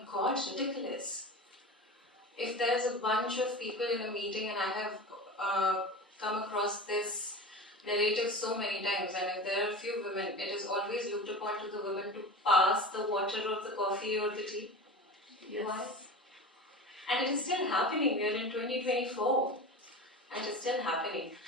God, ridiculous. If there's a bunch of people in a meeting and I have come across this narrative so many times, and if there are a few women, it is always looked upon to the women to pass the water or the coffee or the tea. Yes. Why? And it is still happening. We are in 2024 and it is still happening.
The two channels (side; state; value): both; normal; correlation 0.31